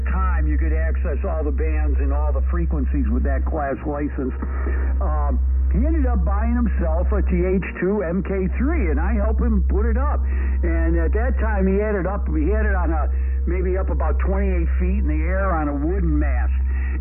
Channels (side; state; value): both; identical; correlation 1.00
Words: time you could access all the bands and all the frequencies with that class license, he ended up buying himself a TH2 MK3, and I helped him put it up. And at that time, he had it on maybe up about 28 feet in the air on a wooden mast.